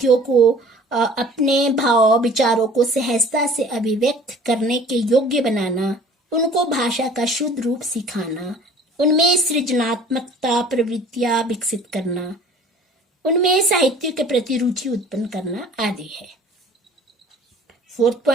को अपने भाव विचारों को सहजता से अभिव्यक्त करने के योग्य बनाना, उनको भाषा का शुद्ध रूप सिखाना, उनमें सृजनात्मकता प्रवृत्तियां विकसित करना, उनमें साहित्य के प्रति रुचि उत्पन्न करना आदि है।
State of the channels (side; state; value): both; normal; correlation 0.49